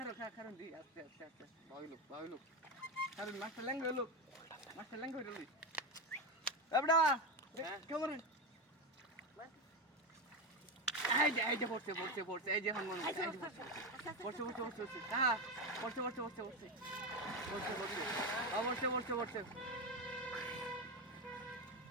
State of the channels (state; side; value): normal; both; correlation 0.14